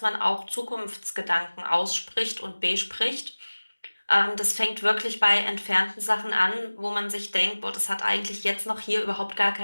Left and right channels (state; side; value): inverted; both; correlation -1.00